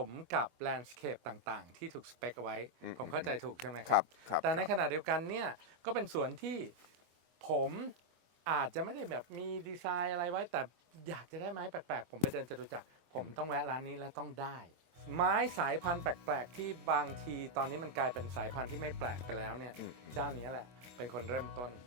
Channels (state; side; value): late; left; 23 ms